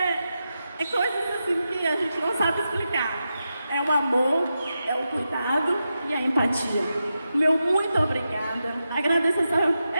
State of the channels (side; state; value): both; inverted; correlation -0.89